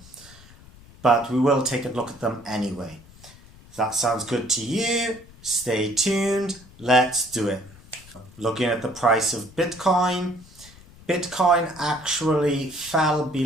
But we will take a look at them anyway. If that sounds good to you, stay tuned, let's do it. Looking at the price of Bitcoin, Bitcoin actually fell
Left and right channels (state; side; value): noise; left; rumble, 22 dB below the sound